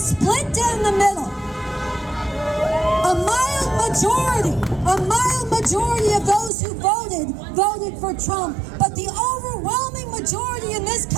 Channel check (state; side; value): drops out; left; at 6.5 s